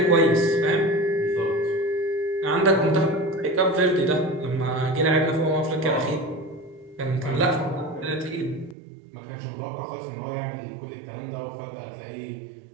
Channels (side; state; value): left; drops out; at 8.8 s